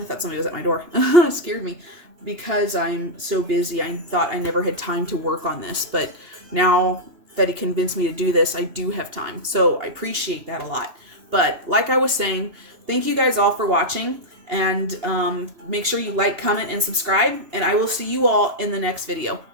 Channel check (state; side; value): late; left; 2.8 ms